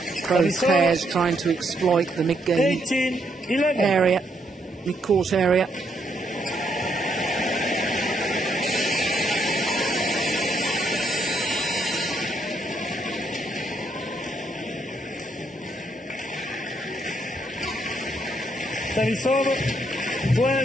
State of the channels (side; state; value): both; normal; correlation 0.74